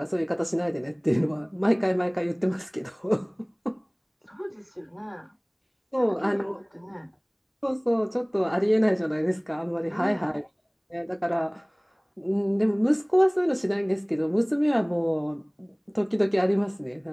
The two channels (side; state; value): both; identical; correlation 1.00